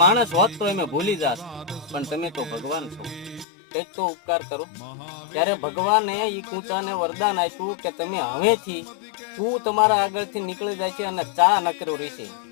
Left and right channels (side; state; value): right; drops out; at 3.5 s